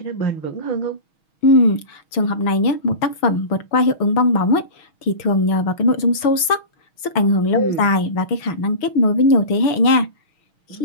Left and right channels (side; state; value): right; late; 6.3 ms